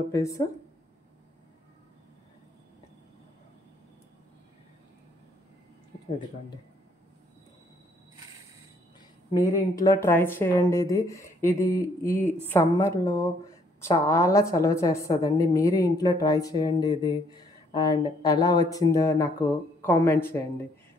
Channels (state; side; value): normal; both; correlation 0.66